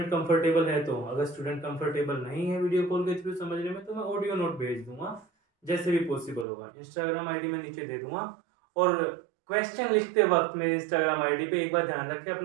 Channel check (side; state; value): left; drops out; at 6.5 s